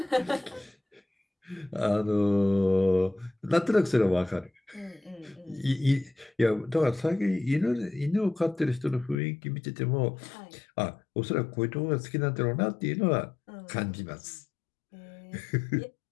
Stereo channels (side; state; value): right; drops out; at 9.2 s